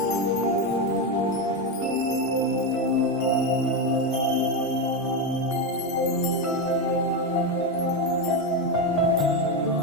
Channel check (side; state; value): both; normal; correlation 0.10